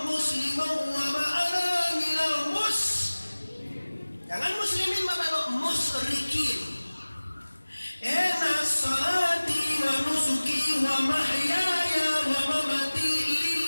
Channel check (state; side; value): inverted; both; correlation -1.00